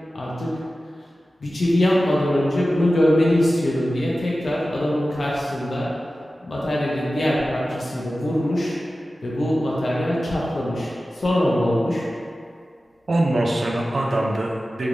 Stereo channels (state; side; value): normal; both; correlation 0.95